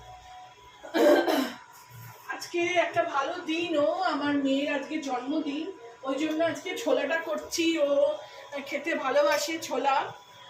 আজকে একটা ভালো দিনও, আমার মেয়ের আজকে জন্মদিন, ওই জন্য আজকে ছোলাটা করছি। ও খেতে ভালোবাসে ছোলা,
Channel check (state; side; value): identical; both; correlation 1.00